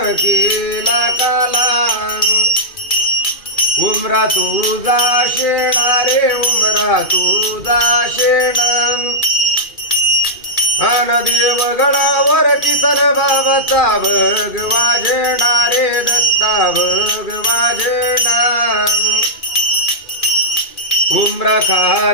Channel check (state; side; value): late; right; 2.4 ms